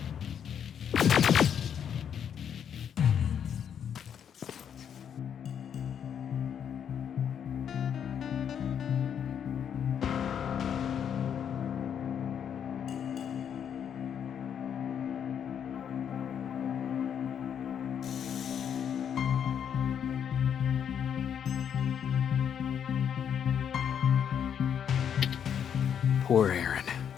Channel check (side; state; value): right; quieter; 8.4 dB